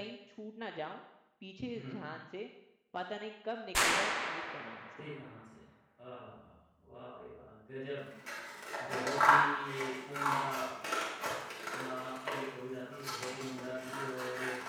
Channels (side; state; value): both; identical; correlation 1.00